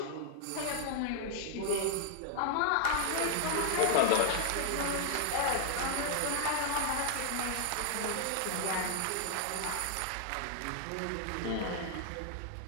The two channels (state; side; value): different; both; correlation 0.00